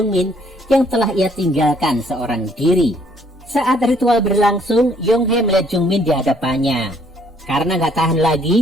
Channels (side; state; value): both; normal; correlation 0.64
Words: yang telah ia tinggalkan seorang diri. Saat ritual berlangsung, Yong-hee melihat Jungmin di hadapannya. Karena gak tahan